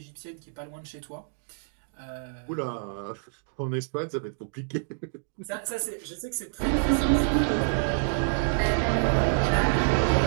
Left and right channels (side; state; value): left; silent; digital silence